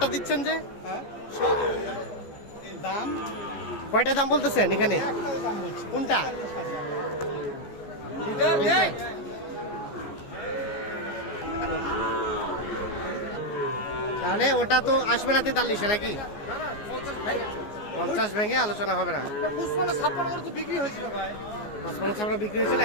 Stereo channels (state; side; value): late; right; 14 ms